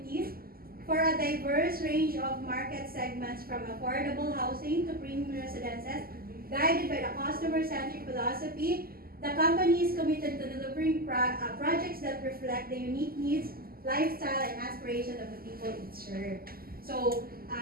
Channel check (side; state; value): left; late; 0.43 ms